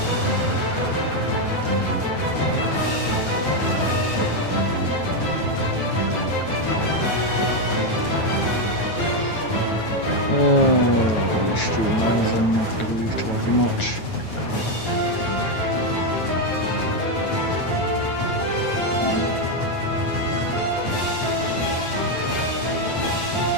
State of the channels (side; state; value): right; late; 9.2 ms